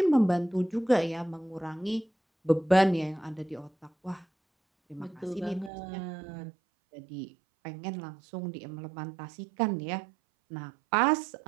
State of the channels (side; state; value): left; drops out; at 5.7 s